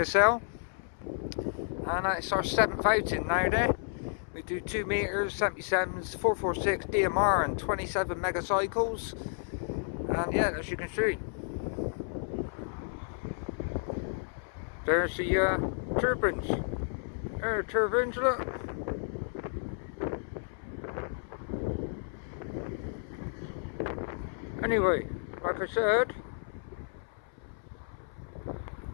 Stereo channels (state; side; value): silent; right; 57 dB below the other